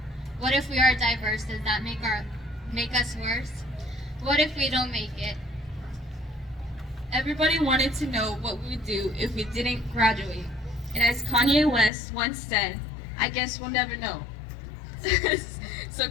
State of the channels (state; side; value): drops out; right; at 11.9 s